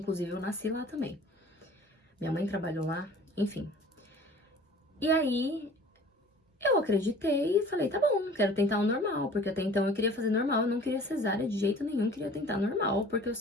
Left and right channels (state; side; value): normal; both; correlation 0.46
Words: eu nasci lá também. Minha mãe trabalhou lá, enfim. E aí, eu acreditei e falei, tá bom, quero tentar o normal. Porque até então eu queria fazer normal, eu não queria cesárea de jeito nenhum, queria tentar normal, porque eu